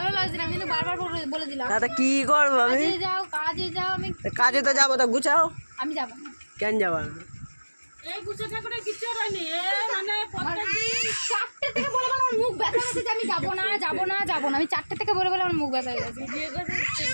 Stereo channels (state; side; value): inverted; both; correlation -1.00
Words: লাগছে না, আমি কিন্তু বারবার বলে দিলাম। দাদা কি করবো আমি? কাজে যাও। আমি কাজে তো যাবো, তো গুছাও। আমি যাবো না। কেন যাবা না? এই গুছাটা করে কিছু হয়নি, মানে 4টে থেকে বলে বলে আমার মুখ ব্যথা হচ্ছে যে আমি যাবো না। আমি 4টে থেকে বলে বলে আমার মুখ ব্যথা হয়ে গেছে।